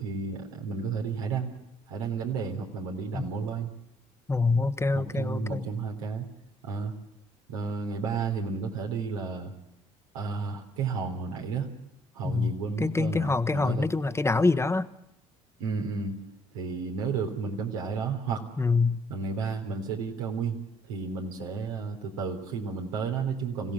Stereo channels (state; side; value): normal; both; correlation 0.66